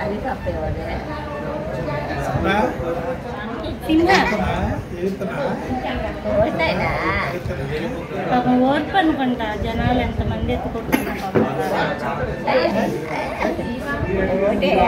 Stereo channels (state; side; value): identical; both; correlation 1.00